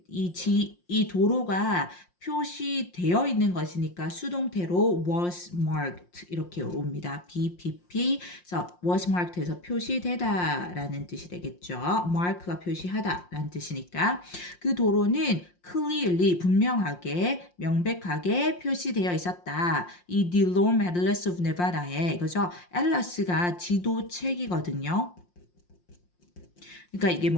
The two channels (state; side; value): late; right; 5.7 ms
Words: 이 도로가 표시되어 있는 것이니까 수동태로 was marked 이렇게 옵니다. BPP 그래서 was marked에서 표시되다라는 뜻이 되겠죠. mark가 표시하다라는 뜻이니까 그 도로는 clearly 분명하게 명백하게 표시되어 있었다. 이 DeLorme Atlas of Nevada에 이거죠. 앨러스가 지도책이거든요. 그러니까 이게